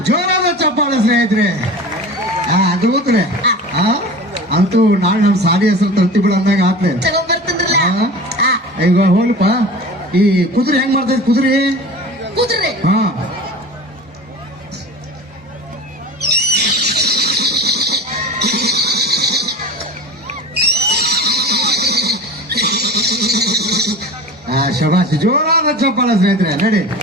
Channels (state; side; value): normal; both; correlation 0.35